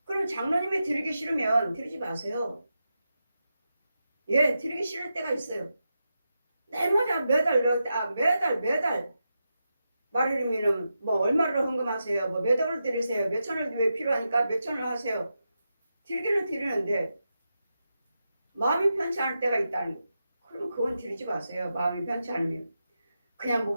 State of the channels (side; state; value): both; inverted; correlation -0.88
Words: 그럼 장로님이 드리기 싫으면 드리지 마세요. 예, 드리기 싫을 때가 있어요. 내마다 매달 말이르면은 얼마를 헌금하세요. 몇 억을 드리세요. 몇 천을 왜 필요하니까 몇 천을 하세요. 드리기는 드리는데 마음이 편치 않을 때가 있다는 거. 그럼 그건 드리지 마세요. 마음이 편치 않으면. 그냥